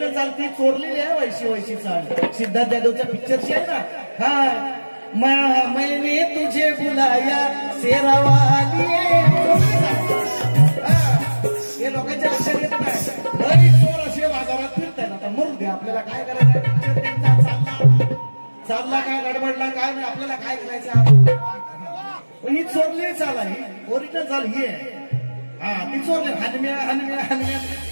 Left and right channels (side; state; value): both; inverted; correlation -1.00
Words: चाल ती चोरलेली आहे. वैशी चाल सिद्धार्थ जाधवच्या पिक्चरची आहे ना. हा मैंने तुझे बुलाया शेरावाली, हे लोकांच्या लक्षात येत नाही. चोर असे बाजारात फिरताय. आता मरू दे, आपल्याला काय करायचं. चालला काय गडबडला काय नाही, आपल्याला काय करायचं. ही चोरली चाल आहे, ओरिजिनल चाल ही आहे. हा ती चोरली. हनम्या हनम्या हनम्या